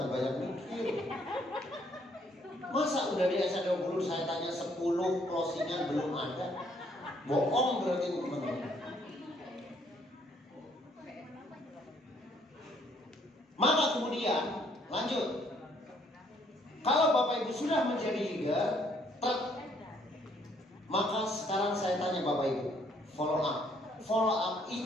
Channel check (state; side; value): normal; both; correlation 0.66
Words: banyak mikir. Masa udah di SC20 saya tanya 10 closingan belum ada? Bohong berarti teman-teman. Maka kemudian lanjut. Kalau Bapak Ibu sudah menjadi leader, maka sekarang saya tanya Bapak Ibu, follow up. Follow up